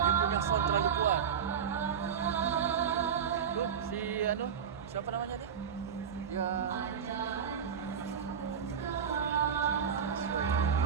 Siapa namanya ni?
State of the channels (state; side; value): quieter; left; 7.5 dB